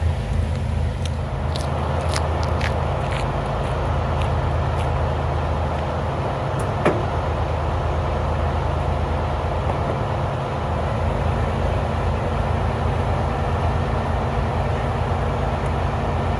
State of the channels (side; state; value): both; identical; correlation 1.00